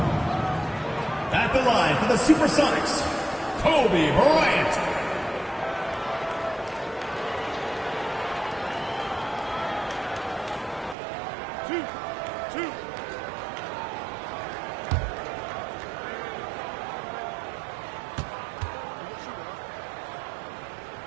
At the line for the Supersonics, Kobe Bryant.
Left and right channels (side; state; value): left; drops out; at 11.0 s